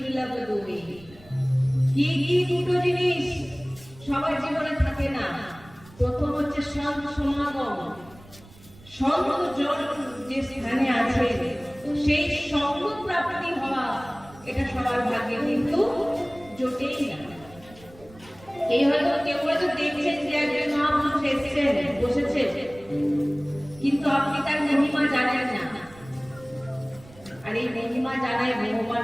दोए। কি কি দুটো জিনিস সবার জীবনে থাকে না? প্রথম হচ্ছে সমাগম, সঙ্গ জন যে স্থানে আছে সেই সঙ্গ প্রাপ্তি হওয়া, এটা সবার ভাগ্যে কিন্তু জোটেই না। এই হয়তো কেউ হয়তো দেখছেন যে একজন মহাপুরুষ এসেছেন, বসেছেন, কিন্তু আপনি তার মহিমা জানেন না। আর এই মহিমা জানায় ভগবান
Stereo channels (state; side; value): noise; right; rumble, 22 dB below the sound